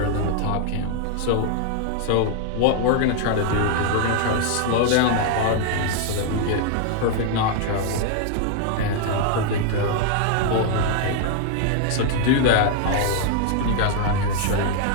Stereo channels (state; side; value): different; both; correlation 0.00